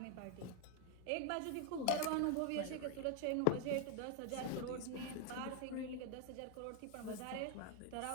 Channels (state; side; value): different; both; correlation 0.01